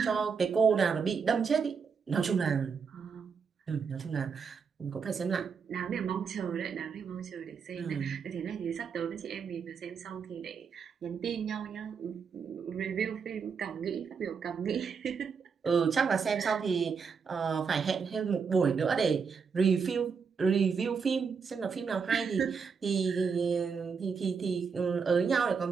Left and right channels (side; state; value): left; quieter; 5.8 dB